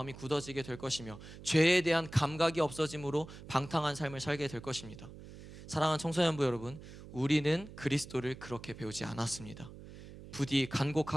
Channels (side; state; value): right; noise; hum, 15 dB below the sound